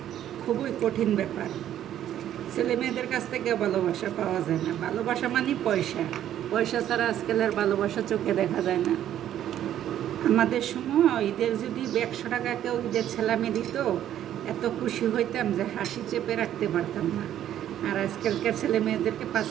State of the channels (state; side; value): quieter; left; 11.3 dB